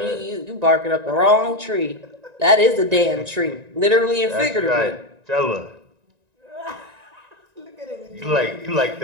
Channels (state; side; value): late; left; 1.9 ms